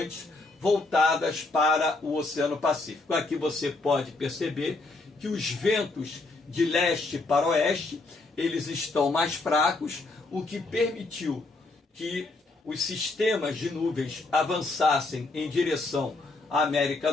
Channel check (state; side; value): quieter; right; 3.3 dB